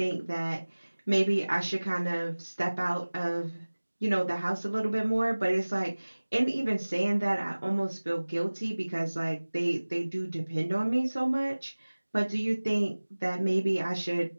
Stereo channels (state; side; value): inverted; both; correlation -1.00